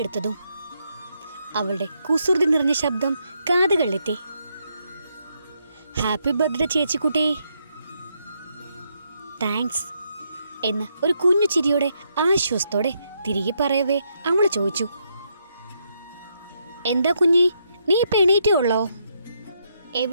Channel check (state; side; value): inverted; both; correlation -0.77